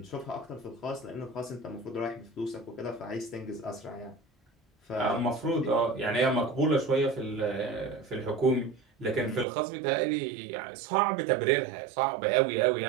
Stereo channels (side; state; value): left; drops out; at 9.5 s